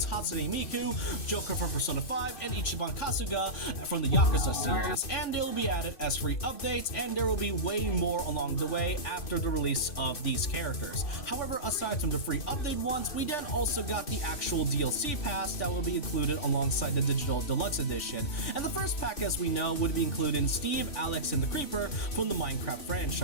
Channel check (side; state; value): right; late; 2.6 ms